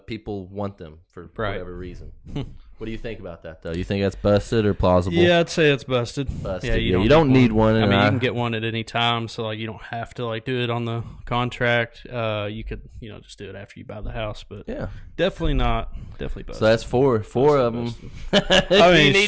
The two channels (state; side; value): identical; both; correlation 1.00